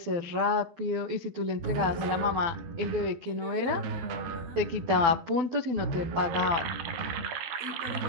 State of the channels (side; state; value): left; late; 12 ms